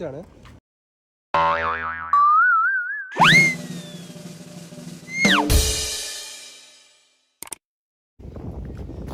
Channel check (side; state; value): both; identical; correlation 1.00